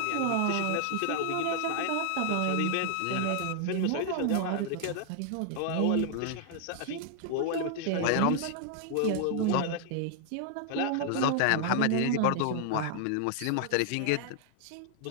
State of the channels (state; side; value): different; both; correlation 0.00